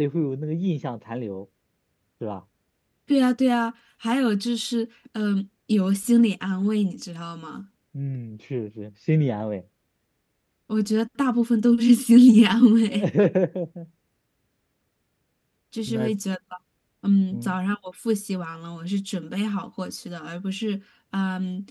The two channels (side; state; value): both; identical; correlation 1.00